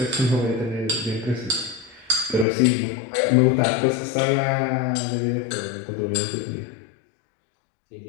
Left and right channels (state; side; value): drops out; right; at 2.5 s